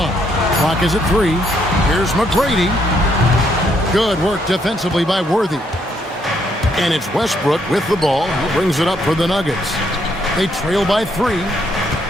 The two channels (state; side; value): normal; both; correlation 0.72